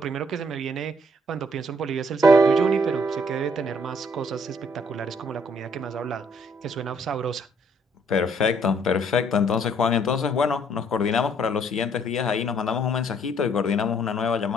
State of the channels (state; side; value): normal; both; correlation 0.65